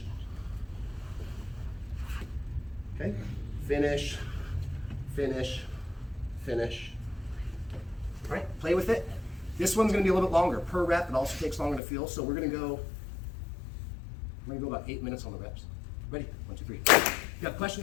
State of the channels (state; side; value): drops out; right; at 11.8 s